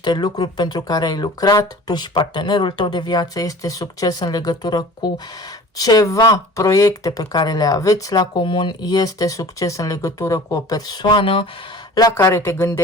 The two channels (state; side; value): normal; both; correlation 0.44